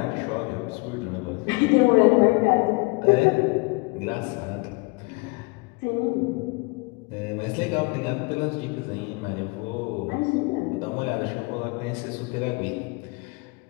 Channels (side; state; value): right; quieter; 28.3 dB